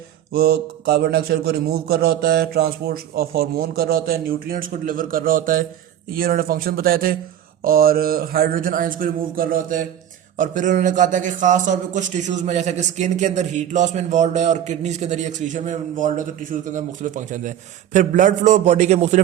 वो कार्बन डाइऑक्साइड को रिमूव कर रहा होता है, ट्रांसपोर्ट ऑफ हार्मोन कर रहा होता है, न्यूट्रिएंट्स को डिलीवर कर रहा होता है। ये उन्होंने फंक्शन बताए थे। और हाइड्रोजन आयंस को रिमूव कर रहा होता है। और फिर उन्होंने कहा था कि खास तौर पे कुछ टिश्यूज में, जैसे कि स्किन के अंदर हीट लॉस में इन्वॉल्व है और किडनीज के अंदर एक्सक्रीशन में इन्वॉल्व है, तो टिश्यूज के अंदर मुख्तलिफ फंक्शन हैं। फिर ब्लड फ्लो बॉडी के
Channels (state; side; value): quieter; left; 10.8 dB